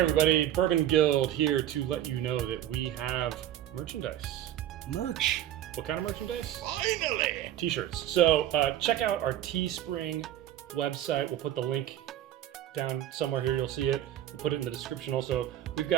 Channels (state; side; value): quieter; left; 12.1 dB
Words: everybody, Bourbon Guild here to let you know that we have merchandise. Merch. What kind of merchandise? Finally! T-shirts. So check out our Teespring website. We'll put the link down somewhere here. You'll see it. We'll put it in the description also. We've